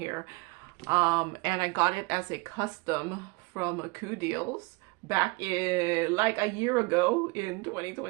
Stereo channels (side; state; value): left; quieter; 26.7 dB